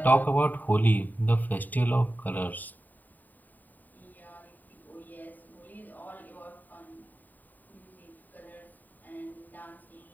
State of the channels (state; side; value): late; right; 0.086 ms